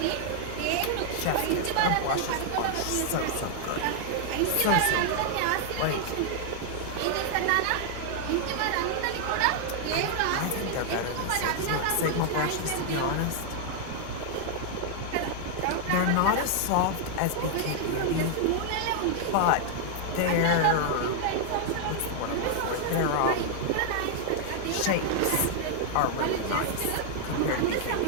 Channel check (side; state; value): both; different; correlation 0.00